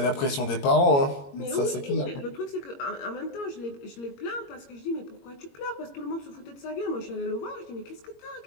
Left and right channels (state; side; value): late; right; 21 ms